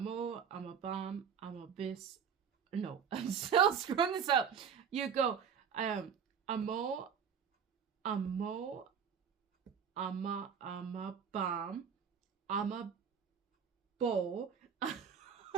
amabis. No, I'm still screwing this up. You go amo, amabam, amabo.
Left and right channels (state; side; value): quieter; left; 7.2 dB